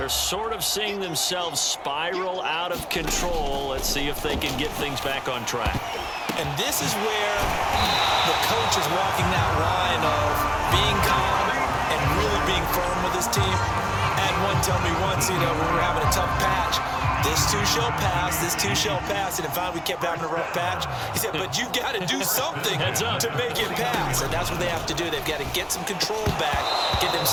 sort of seeing themselves spiral out of control. Let's see if they can get things back on track. And this is where the coach is walking that line of being calm and really being firm with his team. Had one tell me once, when we were having a tough patch, this too shall pass, this too shall pass. And if we kept having a rough patch, he said, but you got to do something to make it pass. And that's what they have to do. They've got to get some control back, get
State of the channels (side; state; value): both; identical; correlation 1.00